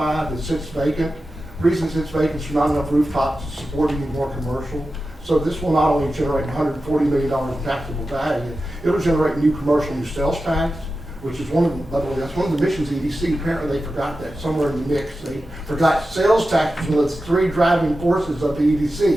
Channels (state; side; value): normal; both; correlation 0.92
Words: that sits vacant. The reason it sits vacant is there's not enough rooftops to support any more commercial. So this will not only generate $140 million in taxable value, it'll generate new commercial, new sales tax, which is by the way, that's one of the missions of EDC. Apparently they forgot that somewhere in the mix. They forgot sales tax was one of the three driving forces of the